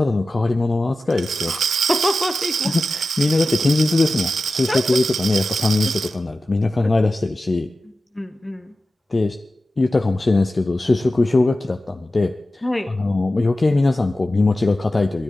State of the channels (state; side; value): normal; both; correlation 0.93